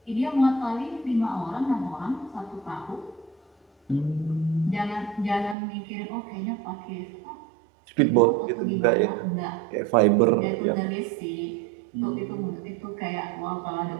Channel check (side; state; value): left; drops out; at 5.6 s